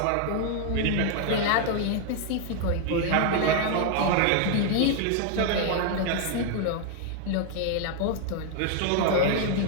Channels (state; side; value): different; both; correlation 0.00